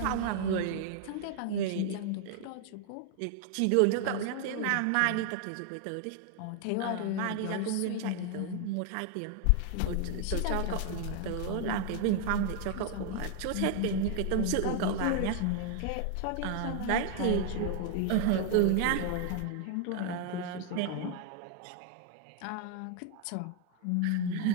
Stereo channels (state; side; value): different; both; correlation 0.00